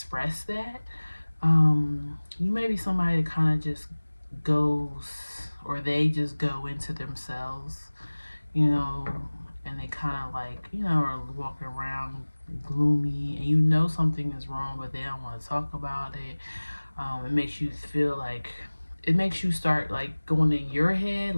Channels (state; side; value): inverted; both; correlation -1.00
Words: that. You may be somebody that kind of just goes, or they just go into themselves, and they kind of like, are walking around gloomy, and something is wrong, but they don't want to talk about it. It makes you feel like, it makes you start like going in your head,